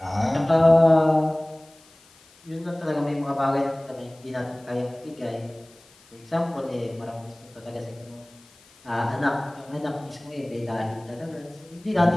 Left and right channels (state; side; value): noise; left; hiss, 27 dB below the sound